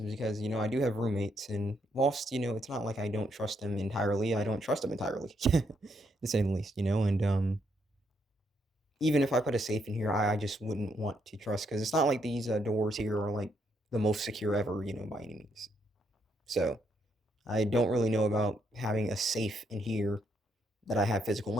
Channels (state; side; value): normal; both; correlation 0.76